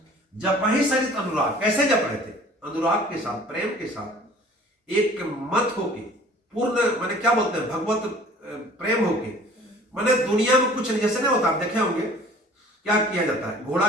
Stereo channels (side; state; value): both; normal; correlation 0.49